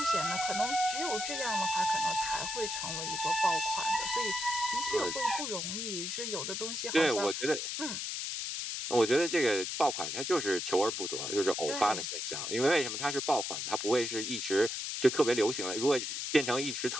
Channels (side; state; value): left; noise; hiss, 3 dB below the sound